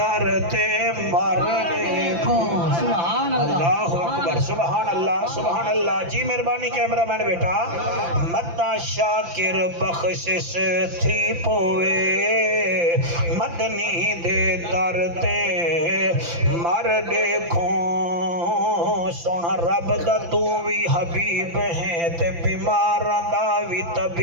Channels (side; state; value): left; late; 5.9 ms